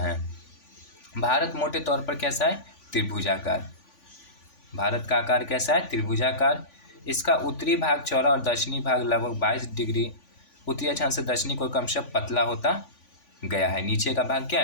भारत मोटे तौर पर कैसा है? त्रिभुजाकार। भारत का आकार कैसा है? त्रिभुजाकार। इसका उत्तरी भाग चौड़ा और दक्षिणी भाग लगभग 22 डिग्री उत्तरी अक्षांश से दक्षिणी कोण क्रमशः पतला होता गया है। नीचे का भाग क्या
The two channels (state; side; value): late; right; 3.5 ms